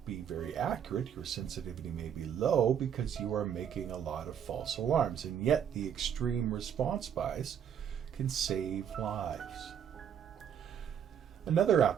be very accurate, your sensitivity may be low because you are making a lot of false alarms, and yet the extreme response bias can save lives. Another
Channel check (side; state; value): left; quieter; 8.6 dB